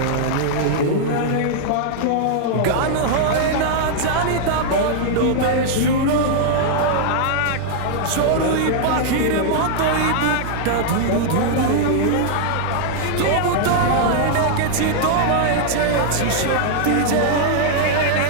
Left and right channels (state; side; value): different; both; correlation -0.01